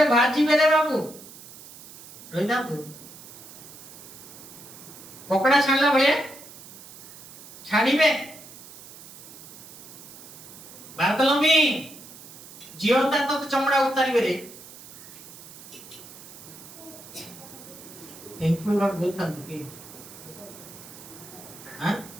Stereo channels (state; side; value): noise; right; hiss, 17 dB below the sound